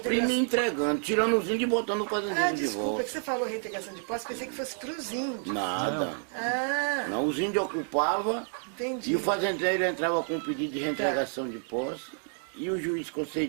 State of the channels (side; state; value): left; silent; 58 dB below the other